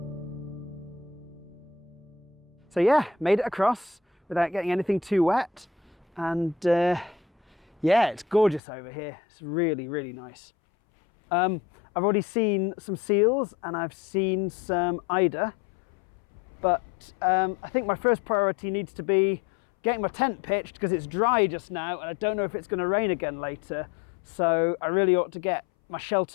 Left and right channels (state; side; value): drops out; right; at 8.6 s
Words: So yeah, made it across without getting anything too wet, and yeah, it's gorgeous over here. It's really, really nice. I've already seen some seals and I've seen some eider, but I think my first priority needs to be getting my tent pitched because it's dry just now and I don't know if it's going to rain again later. So I really ought to get my